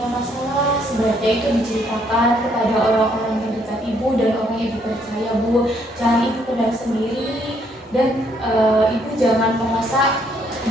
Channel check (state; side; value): normal; both; correlation 0.69